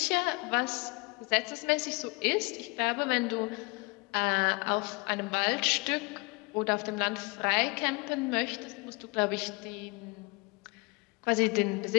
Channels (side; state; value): right; quieter; 27.4 dB